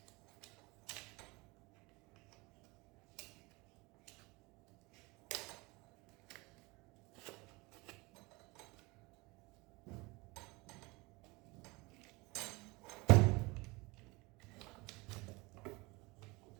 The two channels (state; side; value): quieter; left; 24.7 dB